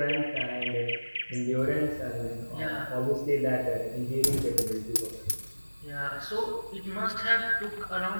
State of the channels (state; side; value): inverted; both; correlation -1.00